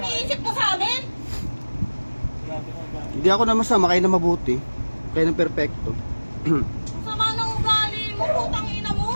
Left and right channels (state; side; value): inverted; both; correlation -1.00